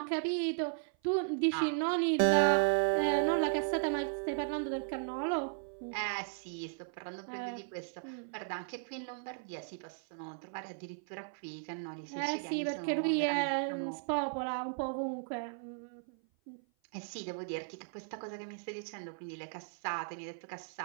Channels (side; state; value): left; silent; 54 dB below the other